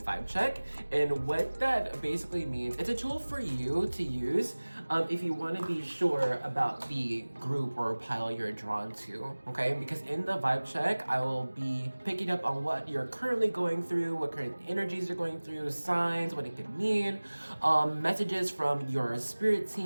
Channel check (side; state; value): both; inverted; correlation -1.00